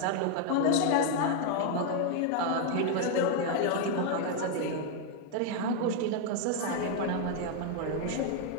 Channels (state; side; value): different; both; correlation 0.01